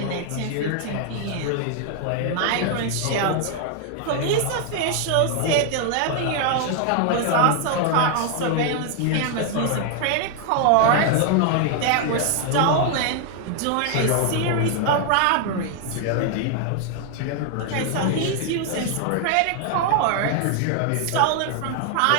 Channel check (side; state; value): both; different; correlation 0.00